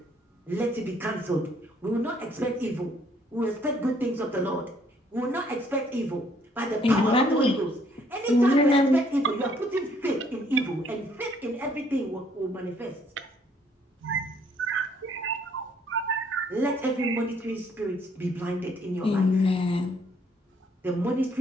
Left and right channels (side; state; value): both; normal; correlation 0.65